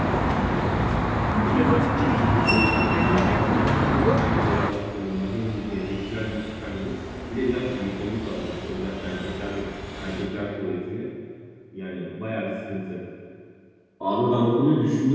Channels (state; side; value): identical; both; correlation 1.00